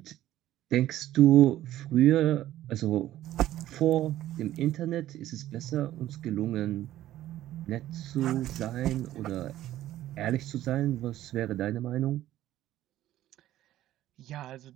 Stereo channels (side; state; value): left; quieter; 13.7 dB